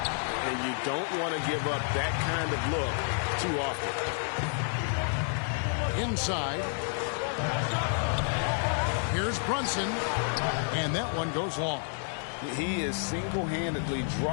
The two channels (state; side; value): silent; right; 58 dB below the other